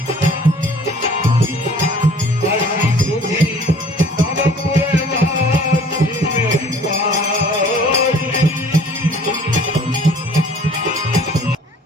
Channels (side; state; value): both; normal; correlation 0.52